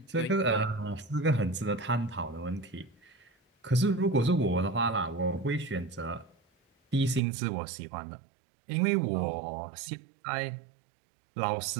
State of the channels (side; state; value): left; drops out; at 7.2 s